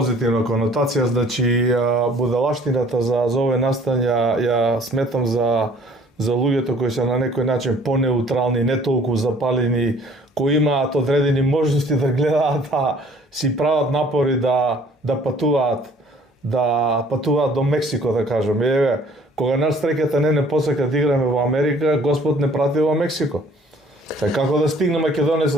конотација, значи будалаштината за овој настан ја сметам за луѓето кои се на некој начин понеутрални, не толку запалени, кои имаат одредени можности да гледаат, си прават напори да патуваат до Мексико, да кажем. Еве, кога нас стреката не посака да играме во Америка, Господ не прати во Мексико. Како да стигне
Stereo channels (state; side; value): normal; both; correlation 0.55